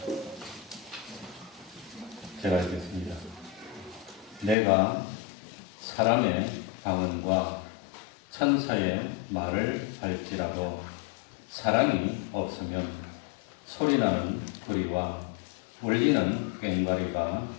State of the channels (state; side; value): drops out; right; at 4.5 s